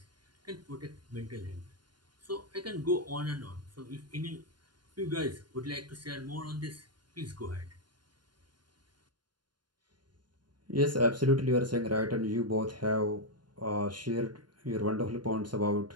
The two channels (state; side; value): late; left; 0.71 ms